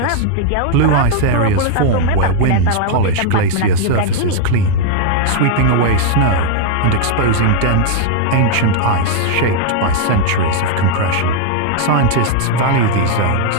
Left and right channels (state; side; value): different; both; correlation 0.00